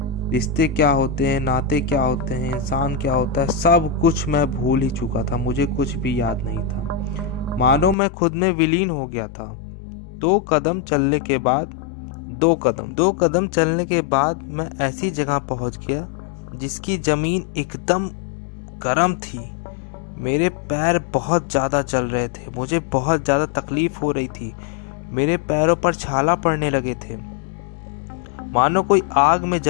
रिश्ते क्या होते हैं, नाते क्या होते हैं, इंसान क्या होता है, सब कुछ मैं भूल ही चुका था। मुझे कुछ भी याद नहीं था। मानो मैं खुद में विलीन हो गया था। दो कदम चलने के बाद मैं ऐसी जगह पहुंच गया जिसकी जमीन एकदम गर्म थी। मेरे पैर बहुत ज़्यादा जल रहे थे। मुझे बहुत ज़्यादा तकलीफ हो रही थी। मेरे पैरों पर छाला पड़ने लगे थे, मानो कोई आग में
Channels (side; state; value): right; drops out; at 8.0 s